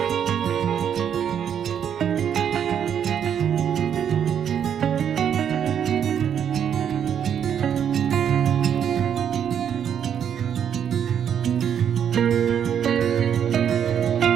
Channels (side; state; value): left; quieter; 8.6 dB